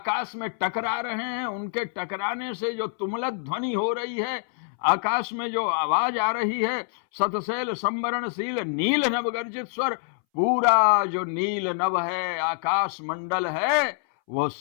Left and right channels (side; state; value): right; silent; 61 dB below the other